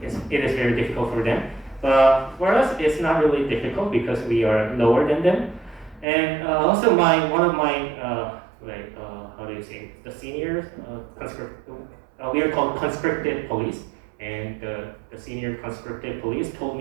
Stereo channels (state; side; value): drops out; left; at 6.1 s